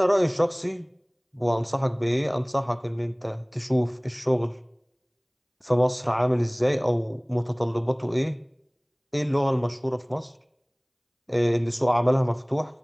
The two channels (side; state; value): both; identical; correlation 1.00